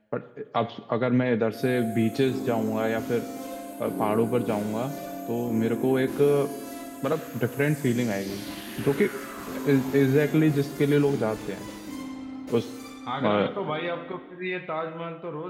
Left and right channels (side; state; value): both; identical; correlation 1.00